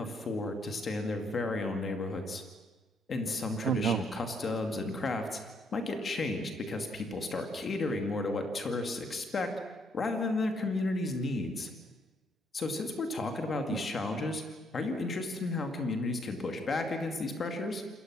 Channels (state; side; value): normal; both; correlation 0.71